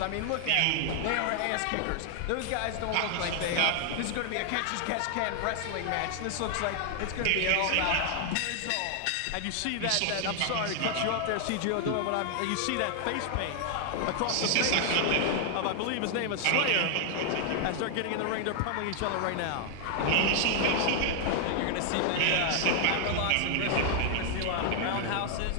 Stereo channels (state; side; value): different; both; correlation 0.00